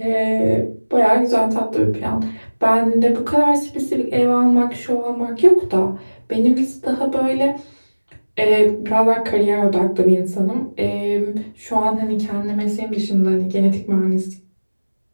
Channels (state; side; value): inverted; both; correlation -1.00